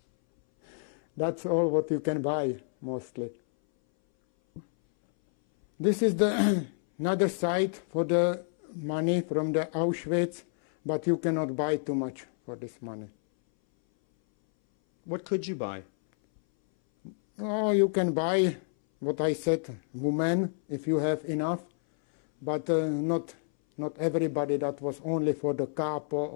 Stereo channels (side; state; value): right; silent; 59 dB below the other